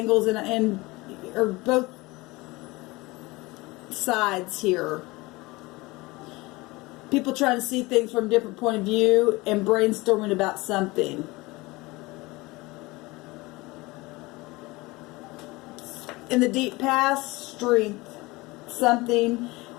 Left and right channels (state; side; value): quieter; right; 22.3 dB